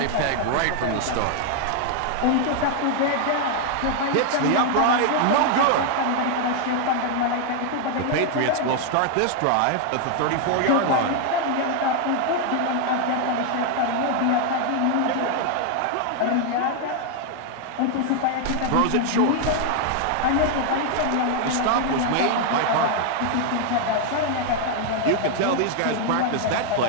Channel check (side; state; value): both; different; correlation 0.00